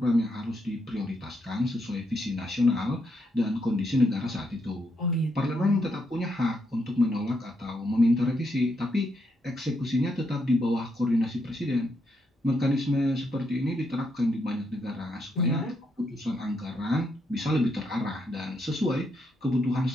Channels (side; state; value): both; normal; correlation 0.78